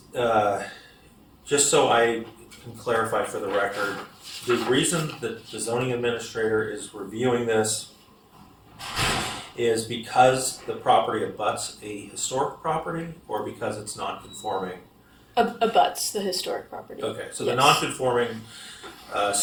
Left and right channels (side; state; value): both; identical; correlation 1.00